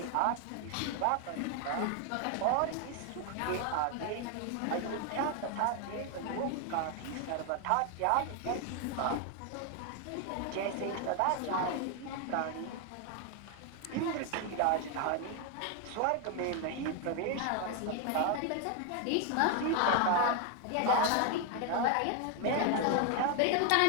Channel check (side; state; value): both; different; correlation 0.01